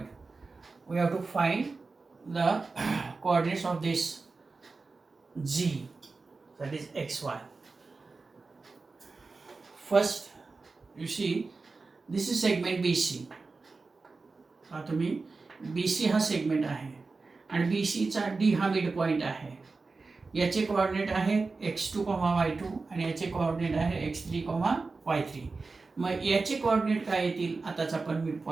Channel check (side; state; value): left; quieter; 4.0 dB